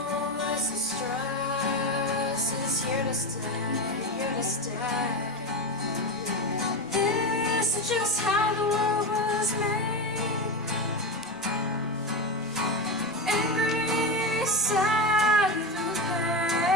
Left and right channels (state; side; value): normal; both; correlation 0.17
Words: the stress is here to stay, here to stay. This is just how the world was made. Sad through